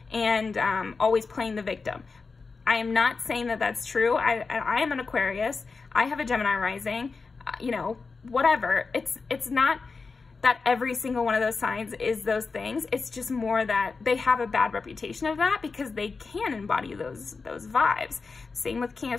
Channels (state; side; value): quieter; right; 4.5 dB